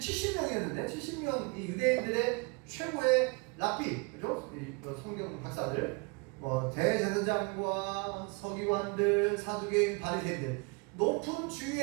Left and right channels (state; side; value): quieter; left; 31.2 dB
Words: 70명 이 유대인들의 최고의 랍비, 그죠? 성경 박사들, 뭐 대제사장과 서기관들, 사두개인, 바리새인들 높은